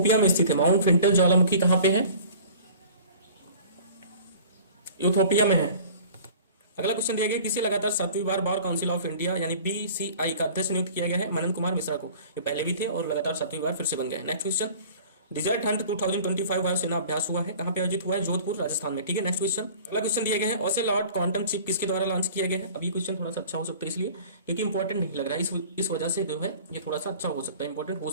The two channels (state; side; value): inverted; both; correlation -0.45